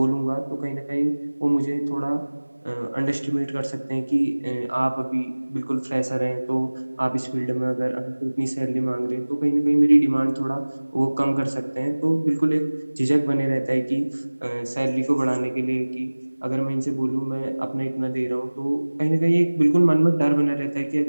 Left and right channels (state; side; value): inverted; both; correlation -1.00